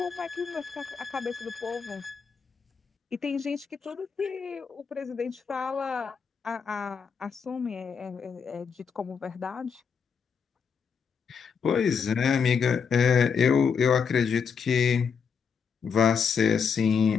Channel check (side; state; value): right; quieter; 6.3 dB